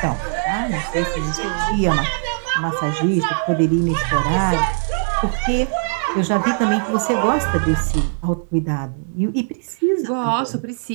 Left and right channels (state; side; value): silent; left; digital silence